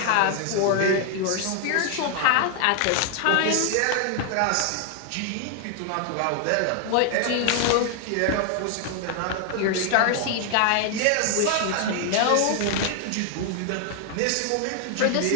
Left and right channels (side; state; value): both; different; correlation 0.00